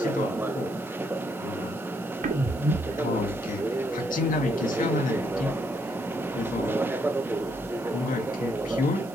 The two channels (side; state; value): right; noise; hiss, 21 dB below the sound